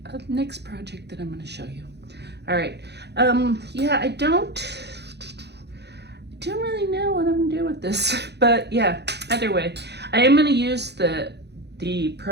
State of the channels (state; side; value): late; left; 0.49 ms